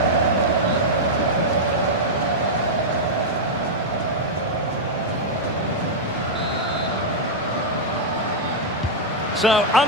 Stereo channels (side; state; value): both; normal; correlation -0.05